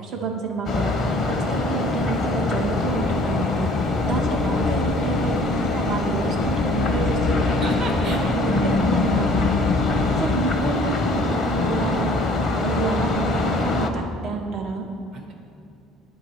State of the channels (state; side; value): normal; both; correlation 0.54